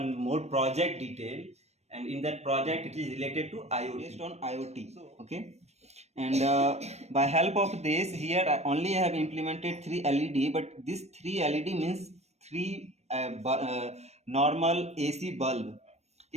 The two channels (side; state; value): left; late; 0.31 ms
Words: more project detail, and in that project it is related to IoT. Based on IoT. Okay, and by help of this here I only have implemented 3 LED, but this 3 LED means three normal AC bulb.